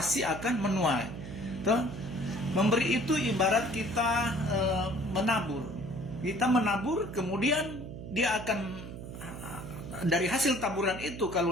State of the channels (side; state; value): right; noise; hum, 10 dB below the sound